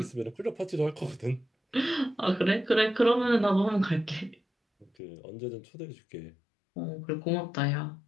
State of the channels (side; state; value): right; drops out; at 4.9 s